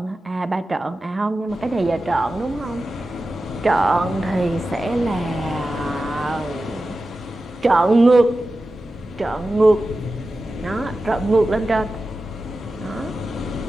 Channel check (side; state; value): both; normal; correlation 0.93